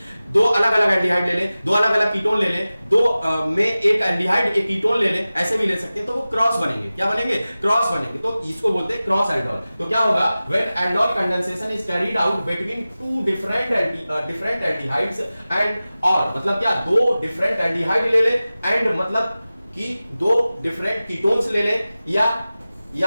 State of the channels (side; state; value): both; inverted; correlation -0.96